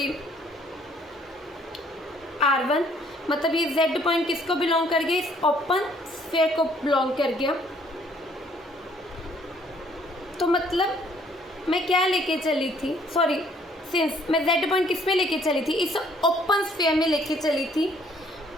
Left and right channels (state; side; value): normal; both; correlation 0.62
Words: R1, मतलब ये z पॉइंट किसको बिलोंग कर गया, इस ओपन स्फीयर को बिलोंग कर गया। तो मतलब मैं क्या लेके चली थी, सिंस मैं z पॉइंट किस में लेके चली थी, इस ओपन स्फीयर में लेके चली थी